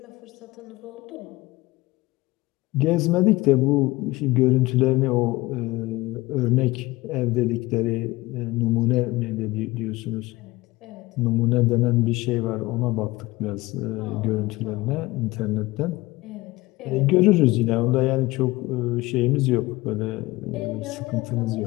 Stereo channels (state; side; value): quieter; right; 20.2 dB